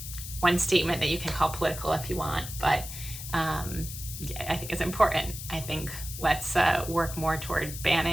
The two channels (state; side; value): noise; left; hiss, 9 dB below the sound